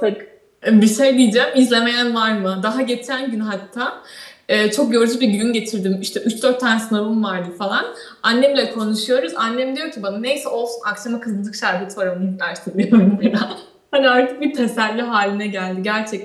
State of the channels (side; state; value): both; identical; correlation 1.00